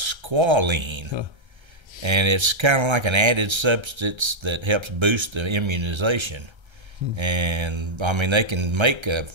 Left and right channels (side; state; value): left; late; 1.3 ms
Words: and it's kind of like an added substance that helps boost the immunization. And I mean, they can make